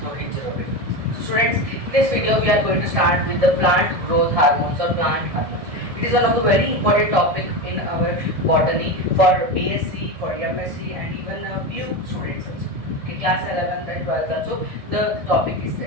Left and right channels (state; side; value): late; left; 1.7 ms